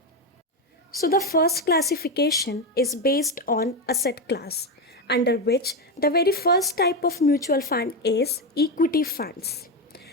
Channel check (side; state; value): both; normal; correlation 0.11